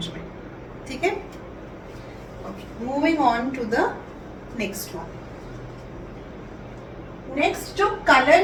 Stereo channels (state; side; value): identical; both; correlation 1.00